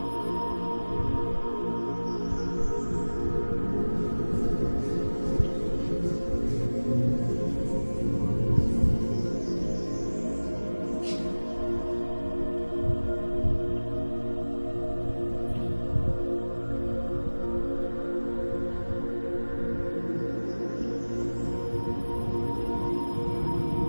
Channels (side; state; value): both; inverted; correlation -1.00